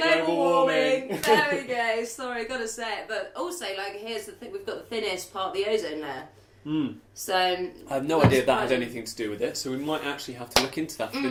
global warming. There we go. Sorry, got to say it. But also, here's the thing: we've got the thinnest part of the ozone layer. So I have no idea that had anything to do with it, so we might actually have to look into that for the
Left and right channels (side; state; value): both; identical; correlation 1.00